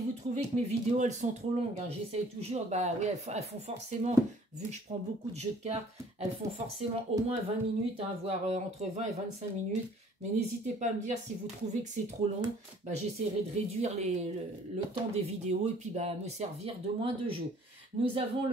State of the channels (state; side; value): normal; both; correlation 0.56